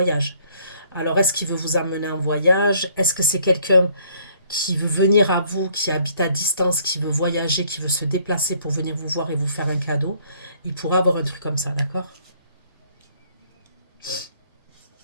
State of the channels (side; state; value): both; inverted; correlation -0.62